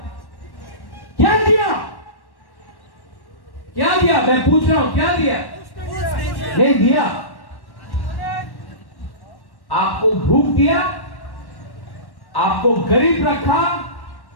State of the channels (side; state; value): right; late; 1.1 ms